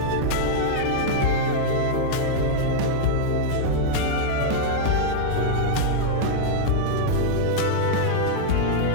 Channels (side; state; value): both; different; correlation -0.02